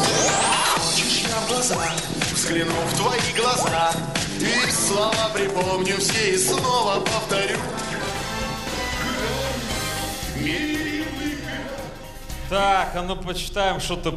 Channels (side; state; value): both; identical; correlation 1.00